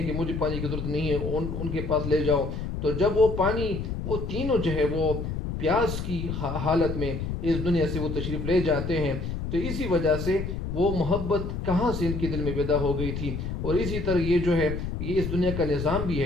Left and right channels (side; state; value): left; noise; rumble, 4 dB below the sound